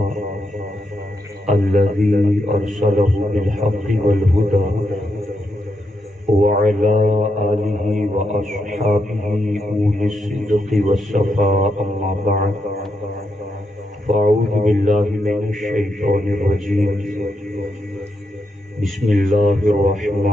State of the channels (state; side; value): normal; both; correlation 0.82